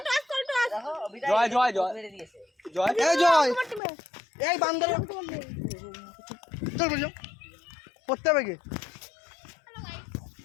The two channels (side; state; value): right; drops out; at 3.8 s